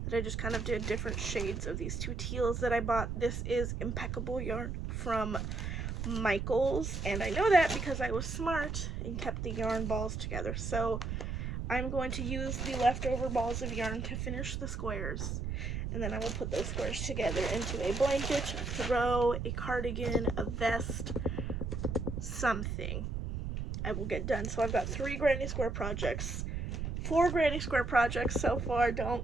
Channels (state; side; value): noise; right; rumble, 3 dB below the sound